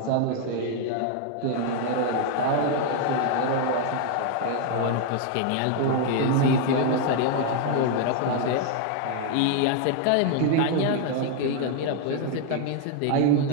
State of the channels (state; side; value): different; both; correlation 0.00